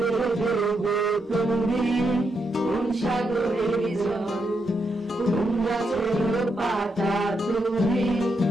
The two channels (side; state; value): both; normal; correlation 0.81